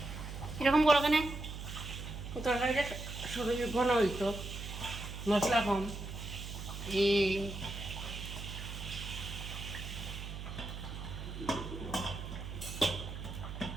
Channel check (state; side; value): noise; right; hum, 8 dB below the sound